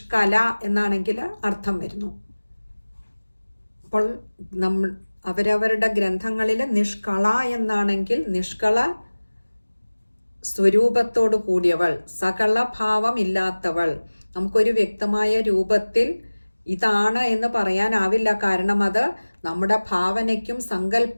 എന്നാണെങ്കിൽ അർത്ഥം വരുന്നു. അപ്പോൾ അവരവരുടെ ഗ്രന്ഥങ്ങളിൽ നിഷ്കള എന്നാണെങ്കിൽ നിഷ്കള സ്വരൂപത്തോട് കൂടിയവൾ, സകല ഭാവം ഇല്ലാത്തവൾ. നമുക്കൊരു വ്യക്തമായ രൂപത്തിൽ ഇതാണ് എന്ന് പറയാനാവില്ല. കാരണം അത് നമ്മുടെ ഭാവനയ്ക്കും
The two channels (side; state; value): both; inverted; correlation -1.00